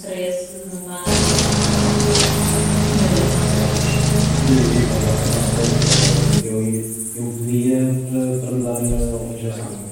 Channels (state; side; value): identical; both; correlation 1.00